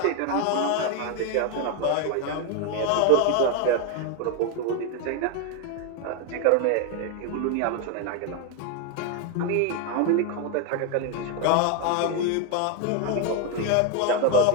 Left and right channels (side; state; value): both; different; correlation 0.01